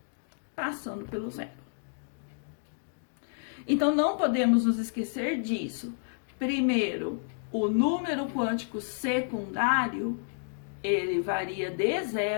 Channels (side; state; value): right; silent; digital silence